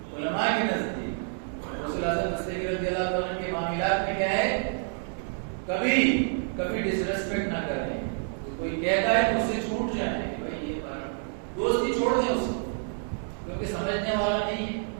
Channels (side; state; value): left; silent; 59 dB below the other